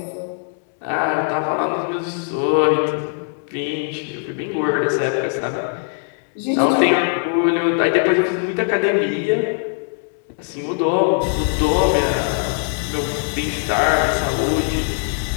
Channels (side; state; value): right; silent; digital silence